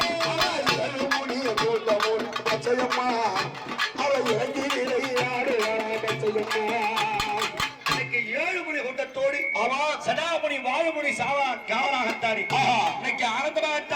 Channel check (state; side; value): identical; both; correlation 1.00